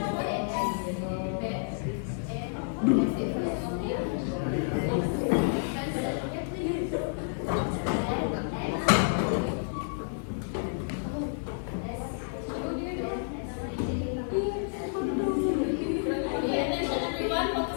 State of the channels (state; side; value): silent; right; 58 dB below the other